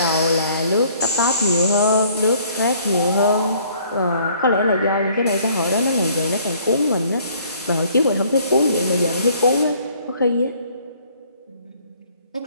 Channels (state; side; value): inverted; both; correlation -0.60